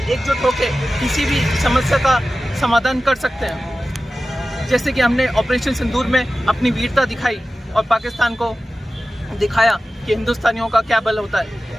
एकजुट होकर किसी भी समस्या का समाधान कर सकते हैं। जैसे कि हमने ऑपरेशन सिंदूर में अपनी वीरता दिखाई और पाकिस्तान को दिखाया कि हिंदुस्तानियों का क्या बल होता है,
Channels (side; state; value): both; normal; correlation 0.95